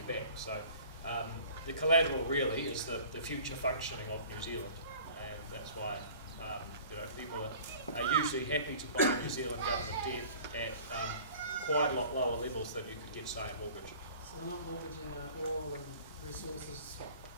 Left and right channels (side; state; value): both; inverted; correlation -0.46